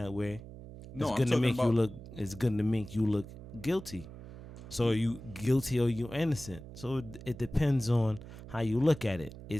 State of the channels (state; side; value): noise; right; hum, 14 dB below the sound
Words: way, it's gonna make you look guilty. So are you guilty or you innocent? So it depends on how you look at it.